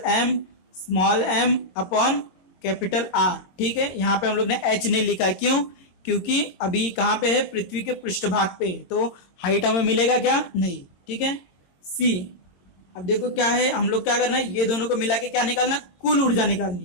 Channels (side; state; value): right; late; 22 ms